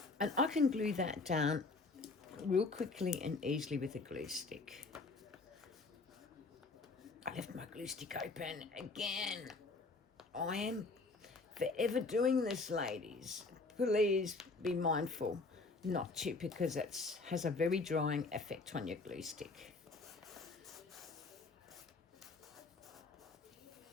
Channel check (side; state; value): right; quieter; 3.7 dB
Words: And I can glue that down real quickly and easily with a glue stick. I left my glue stick open again. I am forever doing this, ladies. Please be mindful not to, because it has a very drying effect on your glue stick.